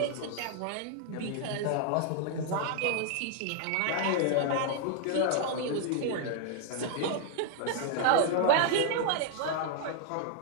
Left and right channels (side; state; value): both; different; correlation 0.00